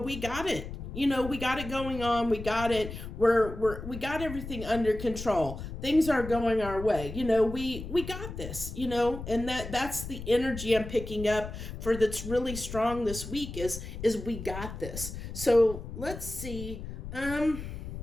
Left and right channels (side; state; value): left; noise; rumble, 9 dB below the sound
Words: got it. We got it going on. We got it. We got everything under control. Things are going our way. We got this, and that's the energy I'm picking up for that's really strong this week is we got this. So let's see. Trying